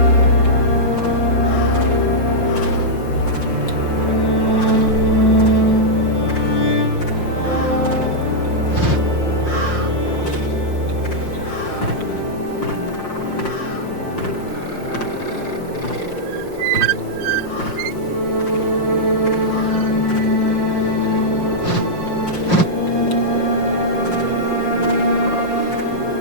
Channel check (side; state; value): right; late; 5.6 ms